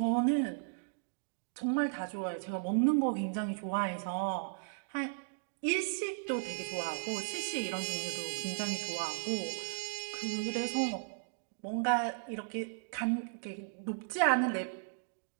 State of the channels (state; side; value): silent; left; digital silence